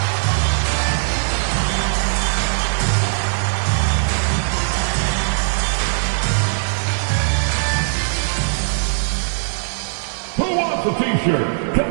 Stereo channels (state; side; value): silent; left; 59 dB below the other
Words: Who wants a t-shirt? Come